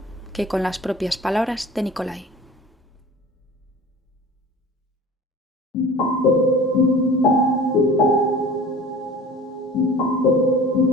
que con las propias palabras de Nikolai?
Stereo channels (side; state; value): both; normal; correlation 0.42